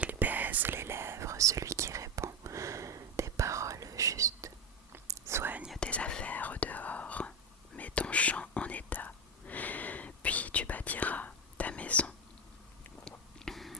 baise les lèvres celui qui répond des paroles justes. Soigne tes affaires au dehors, mets ton champ en état, puis tu bâtiras ta maison.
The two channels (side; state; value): both; normal; correlation 0.13